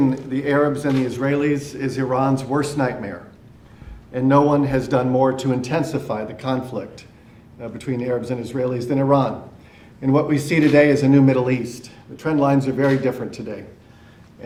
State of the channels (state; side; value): identical; both; correlation 1.00